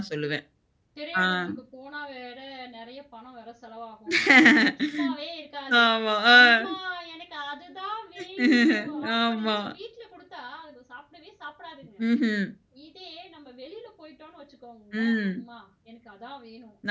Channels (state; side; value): identical; both; correlation 1.00